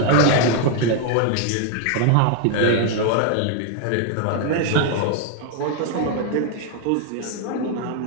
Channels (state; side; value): different; both; correlation 0.00